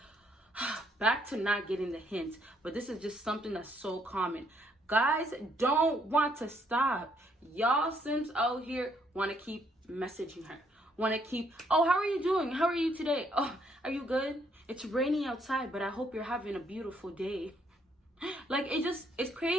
Back to not getting the hint, but this is just something that's so common. Guys don't want to stop. Y'all simps out here want to keep messaging her. Want to keep, oh, how are you doing? How are you today? Oh, are you good? It's raining outside, but I hope you're having a beautiful day. Like, it's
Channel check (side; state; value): both; normal; correlation 0.70